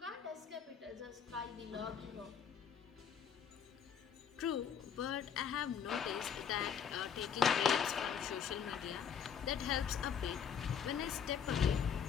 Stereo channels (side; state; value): right; quieter; 7.5 dB